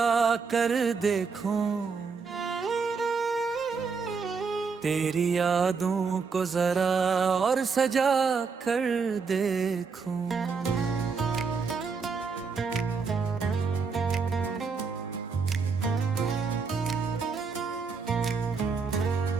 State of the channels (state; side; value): quieter; left; 5.2 dB